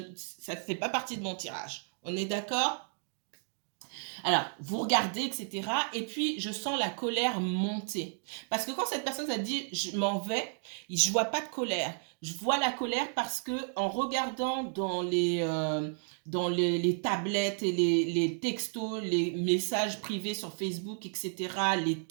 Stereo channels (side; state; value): left; silent; 56 dB below the other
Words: ça ne fait pas partie de mon tirage. On est d'accord? Alors, vous regardez, etc. Et puis, je sens la colère monter. Parce que quand cette personne a dit « je m'en vais », je vois pas de colère. Je vois la colère parce que en regardant dans les tablettes et les textos, les messages privés sur Facebook, etc., les